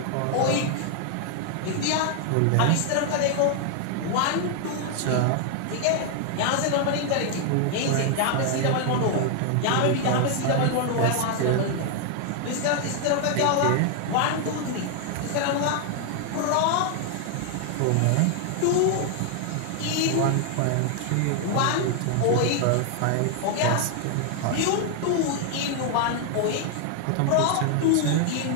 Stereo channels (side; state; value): both; different; correlation 0.00